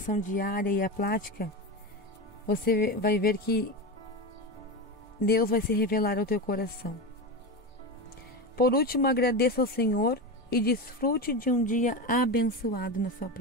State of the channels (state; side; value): normal; both; correlation 0.19